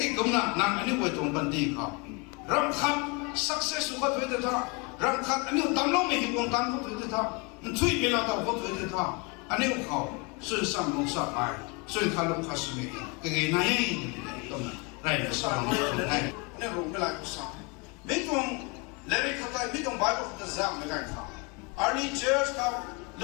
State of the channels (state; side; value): quieter; right; 30.0 dB